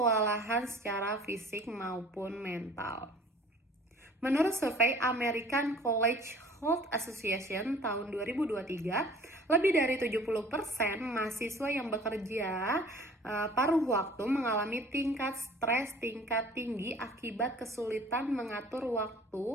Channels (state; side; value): normal; both; correlation 0.49